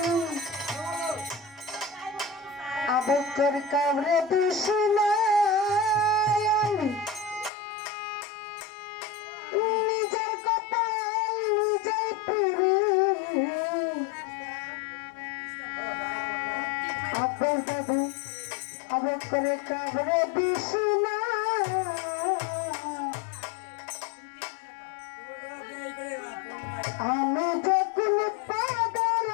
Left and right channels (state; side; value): drops out; right; at 7.5 s